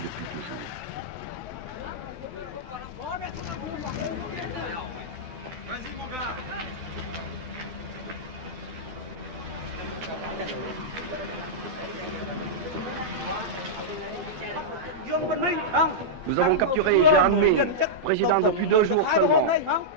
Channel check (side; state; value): both; normal; correlation -0.08